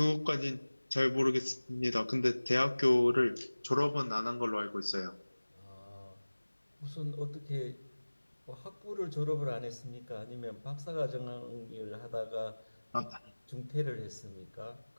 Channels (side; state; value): both; inverted; correlation -1.00